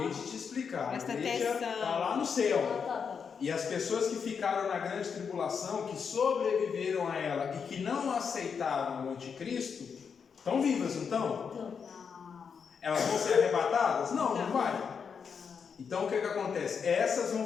de te explicar. Presta A igreja atenção. está lá no céu. Tá. E as pessoas que ficaram na grande tribulação, que sobreviveram a ela e que não aceitaram o anticristo, estão vivas, não estão? Então, Elas vão ser arrebatadas? Não vai. Então o que acontece? Essas vão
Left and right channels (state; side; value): quieter; right; 6.4 dB